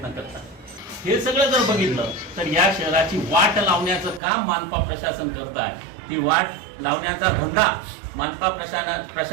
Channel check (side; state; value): left; drops out; at 4.2 s